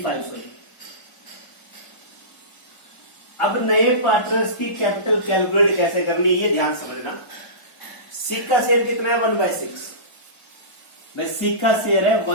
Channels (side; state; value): right; late; 1.4 ms